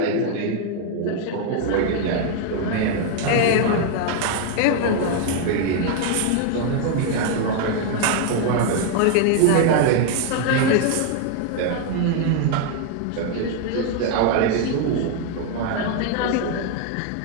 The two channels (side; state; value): both; different; correlation 0.00